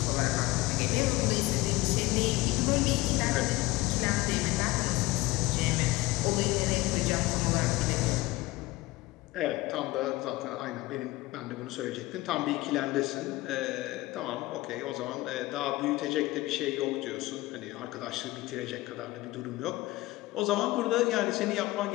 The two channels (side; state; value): right; quieter; 19.6 dB